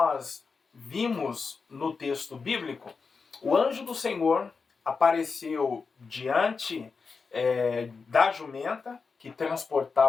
vimos no texto bíblico, o anjo do Senhor apareceu diante da jumenta que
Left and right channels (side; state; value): right; quieter; 4.9 dB